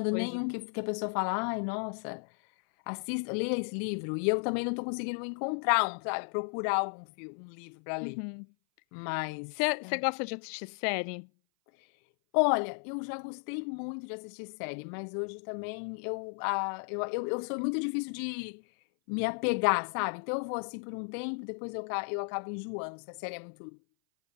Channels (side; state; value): right; silent; 55 dB below the other